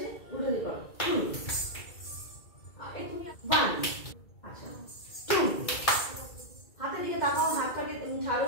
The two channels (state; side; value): late; right; 2.3 ms